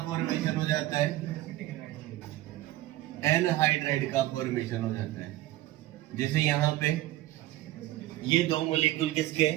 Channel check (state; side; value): quieter; left; 15.9 dB